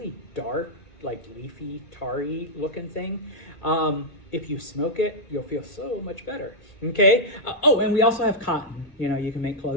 dark, like leafy, tarry looking thing. If you smoke it, you'll feel so much better, okay? And we also have cotton, you can make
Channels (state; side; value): late; right; 2.1 ms